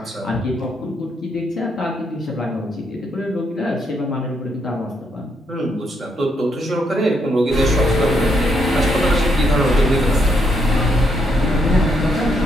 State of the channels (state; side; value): normal; both; correlation 0.76